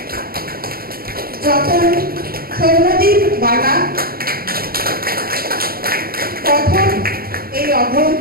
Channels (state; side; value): late; left; 0.43 ms